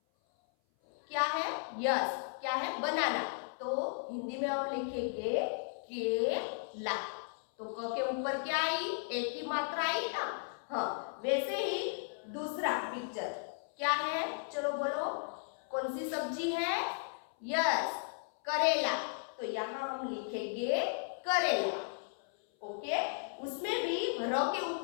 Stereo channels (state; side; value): silent; right; 54 dB below the other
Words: क्या है, यस, क्या है, बनाना। तो हिंदी में हम लिखेंगे केला, तो क के ऊपर क्या आई, एक ही मात्रा आई ना। हाँ, वैसे ही दूसरा पिक्चर क्या है, चलो बोलो कौन सी सब्जी है, यस, करेला, तो यहाँ हम लिखेंगे करेला। ओके, उसमें भी र के